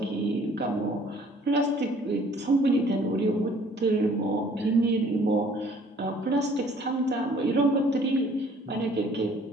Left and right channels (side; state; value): both; normal; correlation 0.56